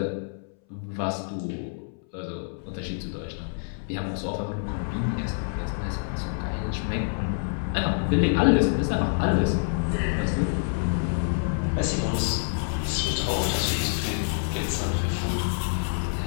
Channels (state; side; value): silent; right; 60 dB below the other